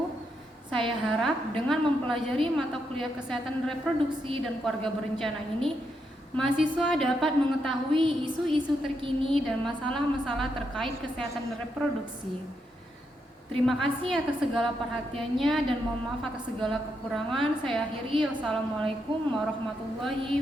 Saya harap dengan mempelajari mata kuliah Kesehatan Reproduksi dan Keluarga Berencana ini, mahasiswa dapat mengetahui isu-isu terkini dan masalah-masalah terkait kesehatan reproduksi. Terima kasih atas segala perhatiannya dan mohon maaf atas segala kekurangan. Saya akhiri. Wassalamualaikum warahmatullahi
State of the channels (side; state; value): both; normal; correlation 0.81